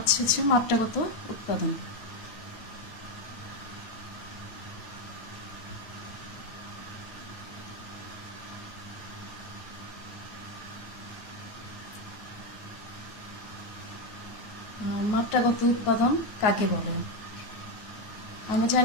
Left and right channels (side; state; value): right; late; 8.9 ms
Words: মাত্রাগত উৎপাদন। মাত্রাগত উৎপাদন কাকে বলে? আমরা